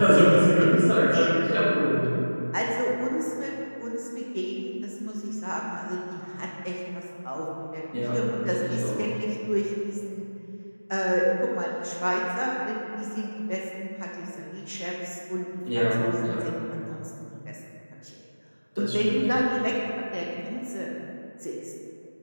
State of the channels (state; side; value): inverted; both; correlation -1.00